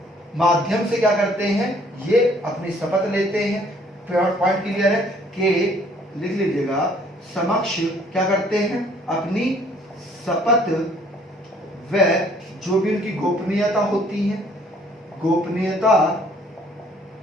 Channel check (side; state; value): both; normal; correlation 0.59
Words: माध्यम से क्या करते हैं, ये अपनी शपथ लेते हैं। पॉइंट क्लियर है कि लिख लीजिएगा, समक्ष क्या करते हैं, अपनी शपथ व जो भी उनकी गोपनीयता होती है, गोपनीयता